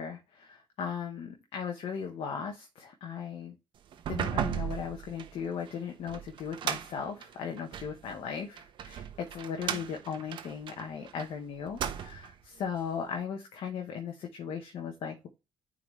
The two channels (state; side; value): normal; both; correlation 0.34